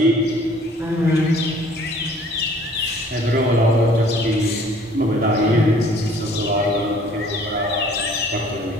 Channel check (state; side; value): normal; both; correlation 0.55